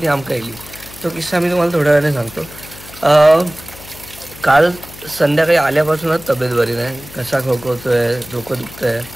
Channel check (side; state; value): left; noise; hum, 18 dB below the sound